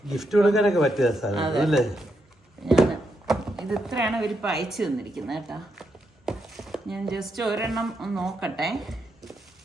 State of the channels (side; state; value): both; normal; correlation 0.82